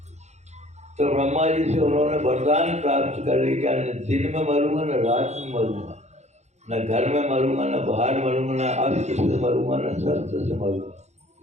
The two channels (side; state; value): left; late; 0.33 ms